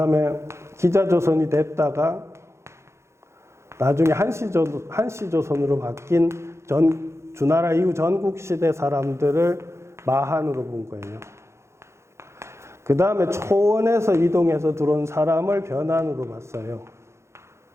기자조선이 됐다가, 나중에 한시조선으로 바뀐 주나라 이후 전국시대 사람들을 마한으로 본 거예요. 그 다음에 초원에서 이동해서 들어온 사람을 변한으로 봤어요.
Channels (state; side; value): late; left; 0.13 ms